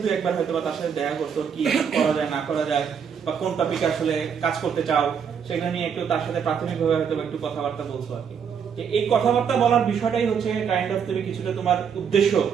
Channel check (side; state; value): left; quieter; 7.2 dB